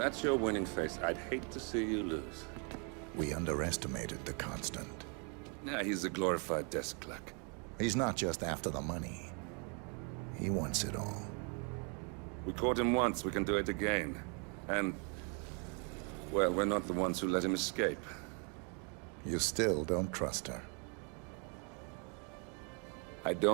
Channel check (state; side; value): quieter; left; 36.8 dB